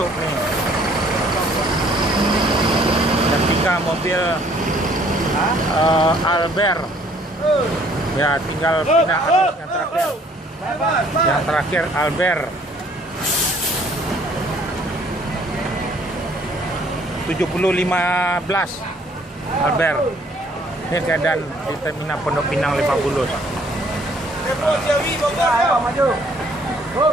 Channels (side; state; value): both; normal; correlation 0.60